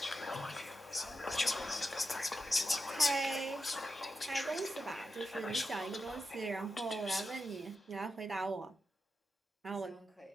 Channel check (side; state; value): both; normal; correlation 0.88